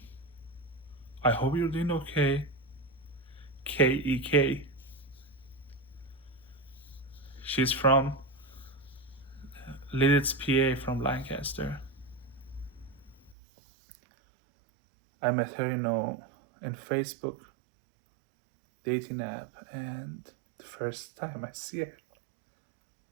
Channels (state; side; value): drops out; left; at 13.4 s